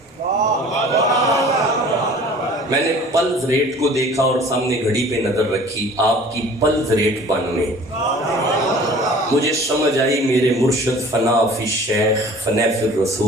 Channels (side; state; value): both; normal; correlation 0.47